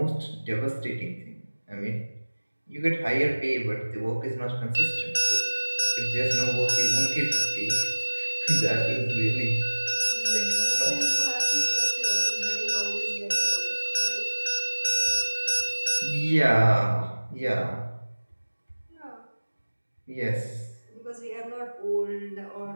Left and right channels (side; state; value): both; inverted; correlation -1.00